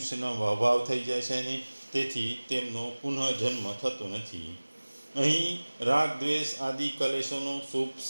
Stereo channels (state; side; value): inverted; both; correlation -1.00